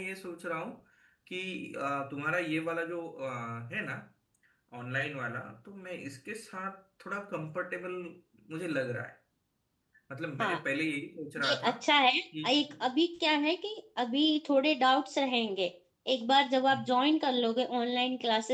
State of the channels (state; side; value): identical; both; correlation 1.00